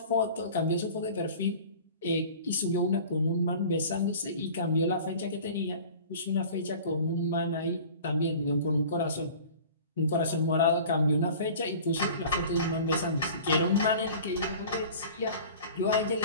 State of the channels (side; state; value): both; inverted; correlation -0.42